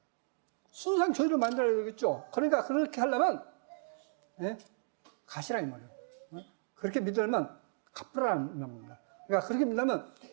순수한 교회를 만들어야 되겠죠. 그러니까 그렇게 하려면 가시라 이 말이에요. 그렇게 믿으려면 갚으라는 겁니다. 그러니까 그렇게 믿으려면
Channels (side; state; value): left; silent; digital silence